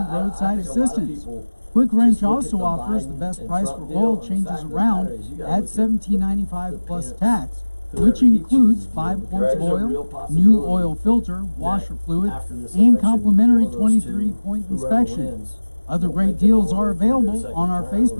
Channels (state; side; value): inverted; both; correlation -1.00